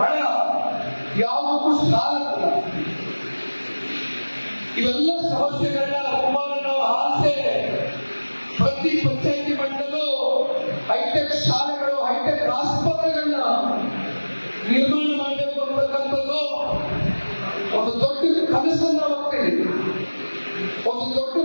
ಯಾವುದಕ್ಕೂ ಸಾಲಲ್ಲ. ಇವೆಲ್ಲ ಸಮಸ್ಯೆಗಳನ್ನ ಕುಮಾರಣ್ಣವರ ಆಸೆ ಪ್ರತಿ ಪಂಚಾಯಿತಿ ಮಟ್ಟದಲ್ಲೂ ಹೈಟೆಕ್ ಶಾಲೆಗಳು, ಹೈಟೆಕ್ ಆಸ್ಪತ್ರೆಗಳನ್ನ ನಿರ್ಮಾಣ ಮಾಡಬೇಕು ಅಂತಕ್ಕಂಥದ್ದು ಒಂದು ದೊಡ್ಡ ಕನಸನ್ನ ಹೋಗ್ತೇನೆ, ಒಂದು ದೊಡ್ಡ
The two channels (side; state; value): both; inverted; correlation -1.00